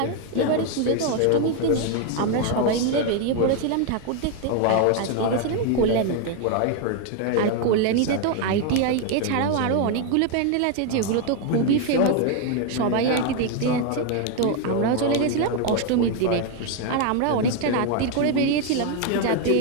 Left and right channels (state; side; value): different; both; correlation 0.01